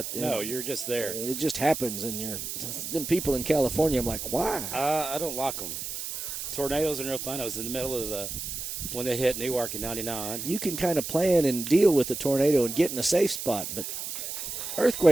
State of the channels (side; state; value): right; noise; hiss, 6 dB below the sound